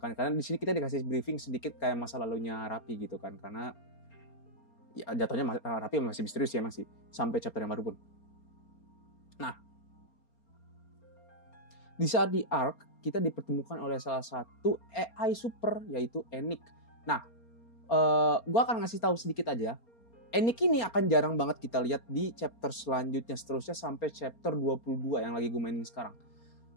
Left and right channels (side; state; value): right; late; 4.3 ms